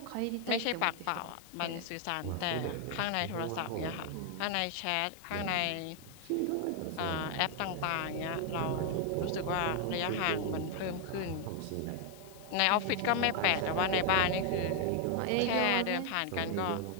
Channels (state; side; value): different; both; correlation 0.00